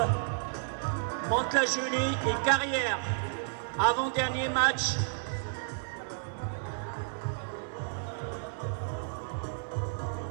Mantes-la-Jolie et Carrière, avant-dernier match.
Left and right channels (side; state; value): left; silent; 57 dB below the other